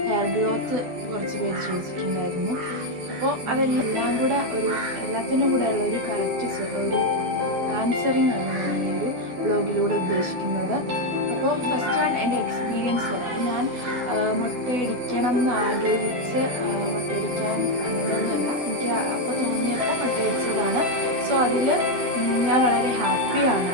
ഹെയർ ഗ്രോത്ത് കുറച്ച് പേര് ചോദിച്ചിട്ടുണ്ടായിരുന്നു. അപ്പോൾ അതെല്ലാം കൂടെ എല്ലാത്തിനും കൂടെ ഉള്ള ഒരു കറക്റ്റ് ഒരു ആൻസറിങ് ആണ് ഞാൻ ഈ ഒരു വ്ളോഗിലൂടെ ഉദ്ദേശിക്കുന്നത്. അപ്പോൾ ഫസ്റ്റ് വൺ എൻ്റെ എക്സ്പീരിയൻസ് പറയാം. ഞാൻ മുട്ടയടിക്കണം എന്ന് ആഗ്രഹിച്ച് മുട്ടയടിക്കാൻ അങ്ങനെയൊന്നുമല്ല, എനിക്ക് അപ്പോൾ തോന്നിയപ്പോൾ മുട്ടയടിച്ചതാണ്. സോ അതിൽ ഞാൻ വളരെ ഹാപ്പിയാണ്.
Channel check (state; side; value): late; left; 12 ms